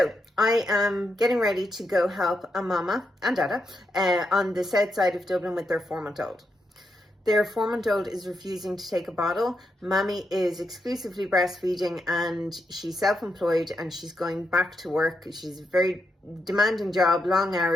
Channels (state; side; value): normal; both; correlation 0.83